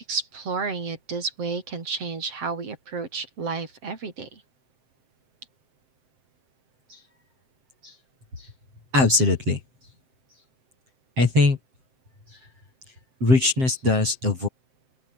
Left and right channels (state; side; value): late; left; 7.7 ms